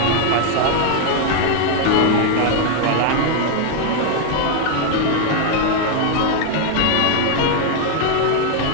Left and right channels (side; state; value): both; different; correlation 0.01